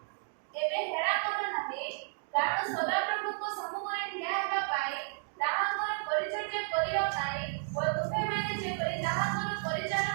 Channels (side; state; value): left; silent; 55 dB below the other